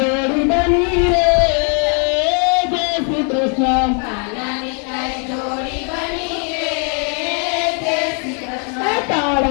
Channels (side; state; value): right; quieter; 39.1 dB